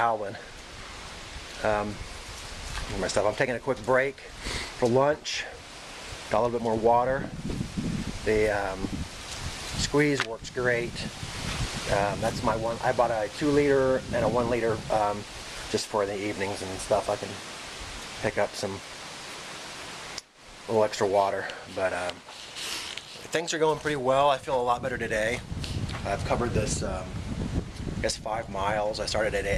My stuff. I'm taking a quick break for lunch. Got a little bit more water. The squeeze works great. That's my one. I bought a 2 liter and a 1 liter just for the evenings and stuff. I can pick up some little extra water. But things are going pretty well. I feel a lot better today. I've covered this I guess 5 miles. I started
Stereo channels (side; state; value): both; identical; correlation 1.00